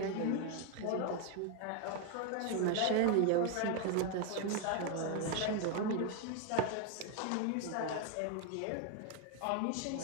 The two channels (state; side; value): different; both; correlation 0.01